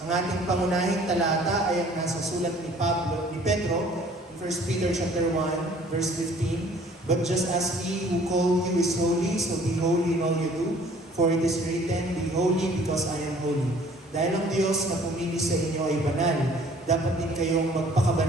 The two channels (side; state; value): both; normal; correlation 0.54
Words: ating pangunahing talata ay ang nasa sulat ni Pedro, in 1 Peter chapter 1, verse 15. But just as He who called you is holy, so be holy in all you do. For it is written, be holy because I am holy. Dahil ang Diyos na pumili sa inyo ay banal, dapat din kayong